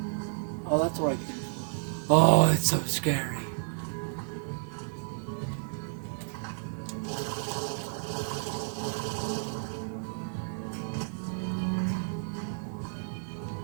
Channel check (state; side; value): silent; left; digital silence